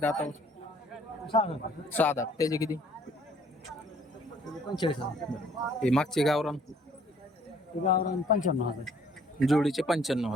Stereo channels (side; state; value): both; normal; correlation 0.59